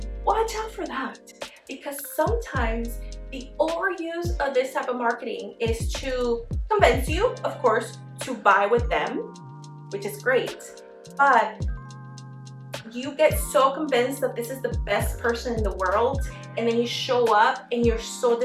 Watch out for that, because sometimes the overuse of this type of marketing is to convince you, of course, to buy with them, which is great, but you get so convinced that this is the best person in the world, and then you show up and you're so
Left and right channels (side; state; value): both; identical; correlation 1.00